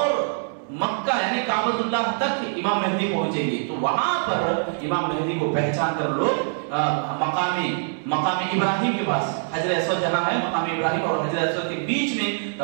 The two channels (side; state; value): left; silent; digital silence